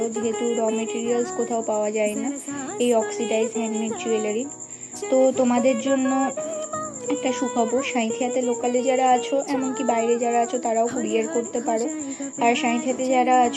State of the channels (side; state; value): both; identical; correlation 1.00